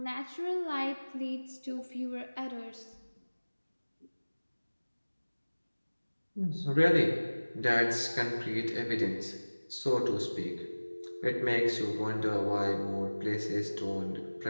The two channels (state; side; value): inverted; both; correlation -1.00